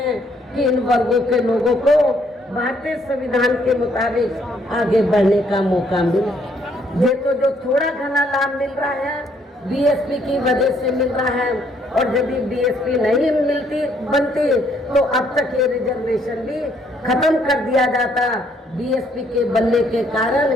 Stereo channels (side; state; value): both; normal; correlation 0.68